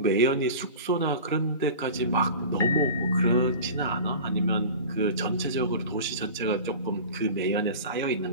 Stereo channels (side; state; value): both; inverted; correlation -0.35